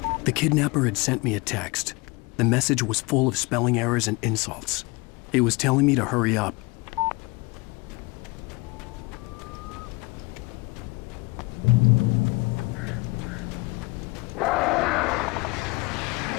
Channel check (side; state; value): right; quieter; 25.2 dB